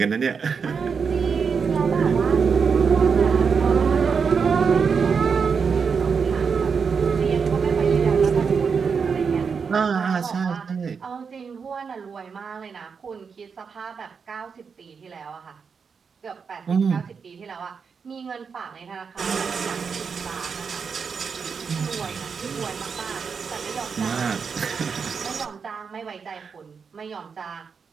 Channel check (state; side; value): quieter; left; 5.8 dB